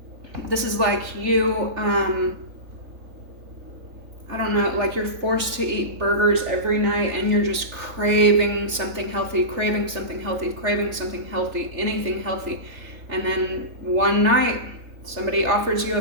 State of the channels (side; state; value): left; late; 3.4 ms